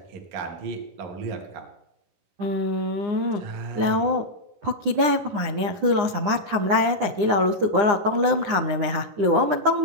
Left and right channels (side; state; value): left; late; 9.9 ms